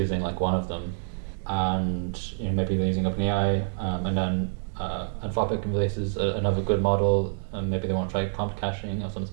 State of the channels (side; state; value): left; silent; digital silence